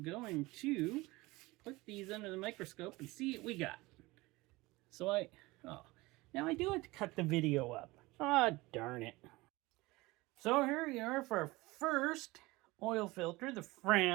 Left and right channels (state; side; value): quieter; left; 21.4 dB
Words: going to put these under the microscope and see what we got. So now I do have to cut the video up. Ah, darn it. So here we are for our first oil filter, the